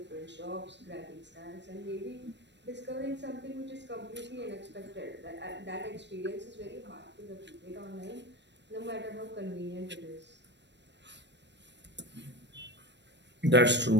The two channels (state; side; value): late; left; 0.51 ms